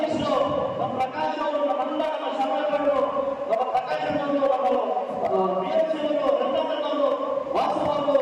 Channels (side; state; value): both; identical; correlation 1.00